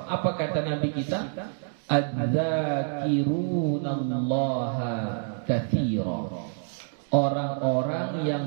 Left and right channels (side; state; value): left; silent; digital silence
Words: apa kata Nabi kita? Adz-dzakirunallaha katsira. Orang-orang